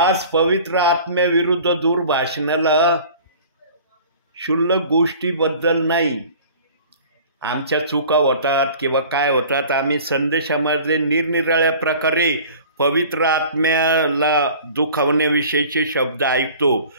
पवित्र आत्म्याविरुद्ध दुर्भाषणाला क्षुल्लक गोष्टीबद्दल नाही. आमच्या चुका होतात किंवा काय होतात, आम्ही संदेशामध्ये निरनिराळ्या प्रकारे पवित्र आत्म्याला दुखावण्याविषयीचे शब्द ऐकतो.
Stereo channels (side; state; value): both; inverted; correlation -0.45